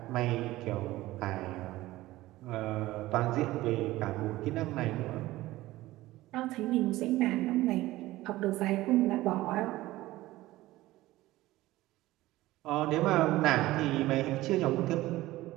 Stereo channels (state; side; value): quieter; left; 17.3 dB